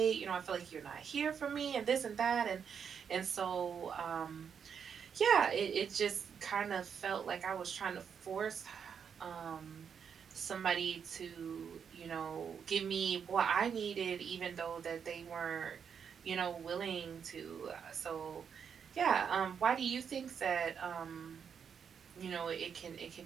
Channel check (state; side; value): quieter; left; 7.1 dB